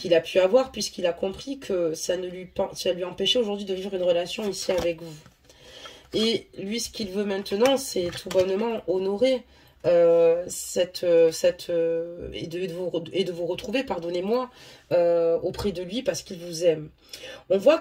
a pu avoir, puisqu'il a compris que ça lui empêchait aujourd'hui de vivre une relation ici avec vous. Et lui, ce qu'il veut maintenant, c'est tout bonnement honorer et de vous retrouver, pardonnez-moi, auprès de lui parce qu'il vous aime. On voit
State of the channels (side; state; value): both; identical; correlation 1.00